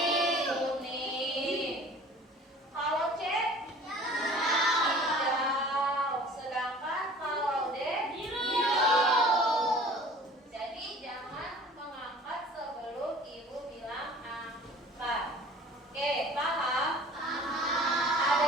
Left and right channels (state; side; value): normal; both; correlation 0.46